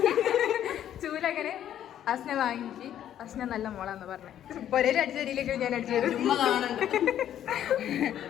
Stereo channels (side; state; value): right; quieter; 10.8 dB